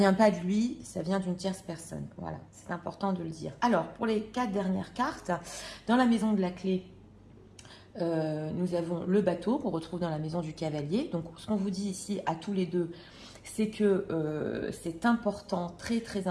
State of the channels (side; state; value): both; identical; correlation 1.00